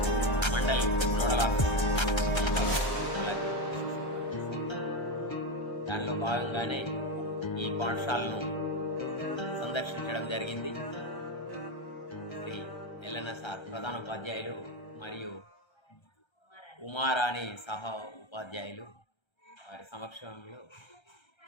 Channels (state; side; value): late; right; 1.3 ms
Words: Mandal nodal officer. దానిలో భాగంగానే ఈ పాఠశాలను సందర్శించడం జరిగింది. Shri Yellanna sir ప్రధానోపాధ్యాయులు మరియు ఉమారాణి సహా ఉపాధ్యాయులు వారి సమక్షంలో